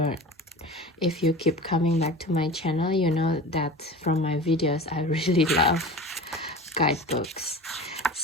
If you keep coming back to my channel, you know that from my videos I really love guidebooks.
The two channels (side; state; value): both; normal; correlation 0.35